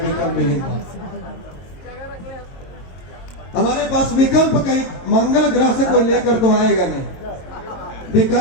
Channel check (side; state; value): right; late; 22 ms